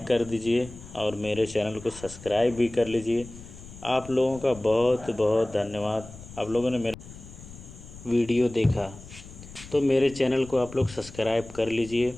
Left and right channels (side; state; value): left; noise; rumble, 17 dB below the sound